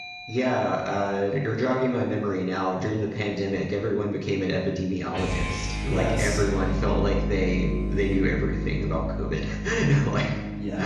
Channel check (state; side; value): identical; both; correlation 1.00